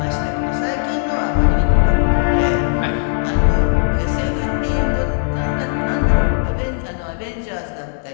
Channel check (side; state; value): right; silent; 64 dB below the other